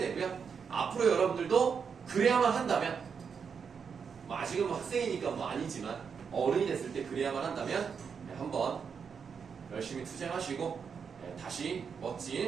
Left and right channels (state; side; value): quieter; left; 6.4 dB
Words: 앞으로 여러분들도 그래야만 한다면, 뭐 아직은 뭐 학생이니까 뭐 아니지만 어른이 됐을 때 그래야만 한다면 한번 열심히 투쟁하시고 다시